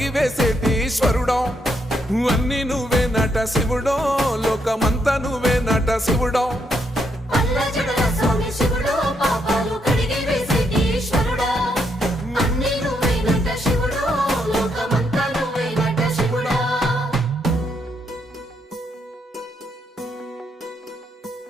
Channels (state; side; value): normal; both; correlation 0.77